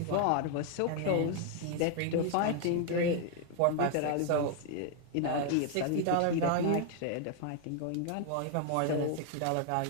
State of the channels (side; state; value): both; different; correlation 0.00